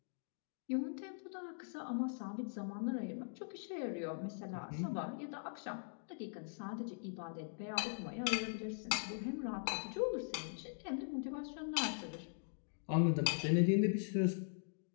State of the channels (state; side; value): silent; right; digital silence